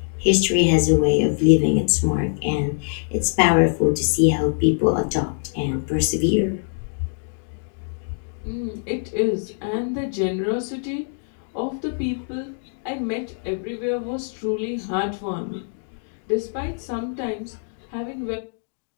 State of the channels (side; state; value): right; silent; 63 dB below the other